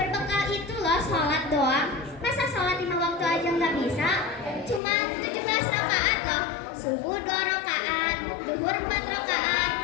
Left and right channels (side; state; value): right; drops out; at 4.8 s